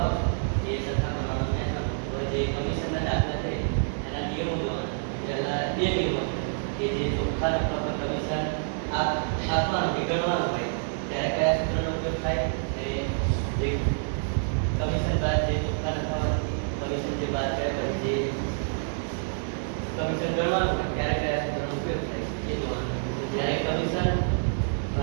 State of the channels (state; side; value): silent; left; 60 dB below the other